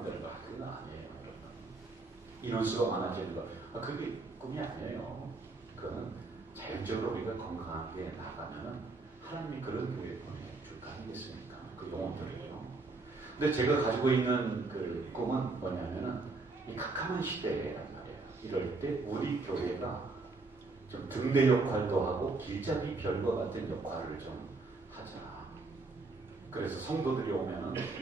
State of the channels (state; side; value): quieter; left; 3.6 dB